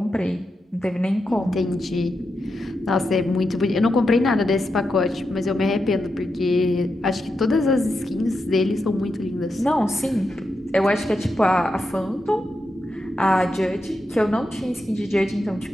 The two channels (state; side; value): normal; both; correlation 0.87